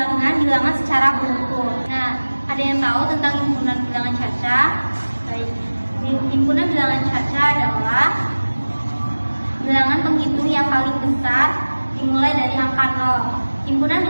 secara berukur. Nah, ada yang tahu tentang himpunan bilangan caca? Baik, himpunan bilangan caca adalah bilangan penghitung yang paling besar dimulai dari angka 0. Himpunan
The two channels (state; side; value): inverted; both; correlation -1.00